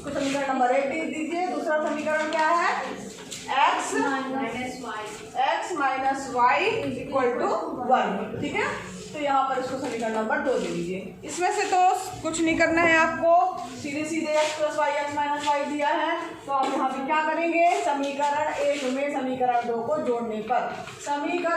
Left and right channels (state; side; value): identical; both; correlation 1.00